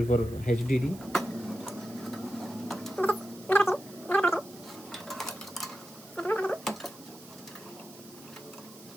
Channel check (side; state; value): right; noise; hiss, 19 dB below the sound